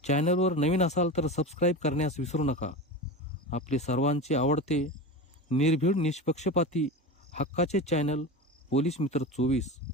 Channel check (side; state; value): both; normal; correlation 0.26